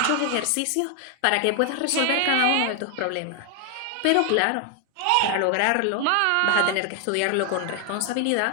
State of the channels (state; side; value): different; both; correlation 0.00